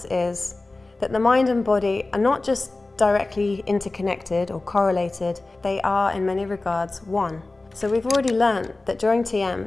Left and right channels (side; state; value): right; quieter; 3.2 dB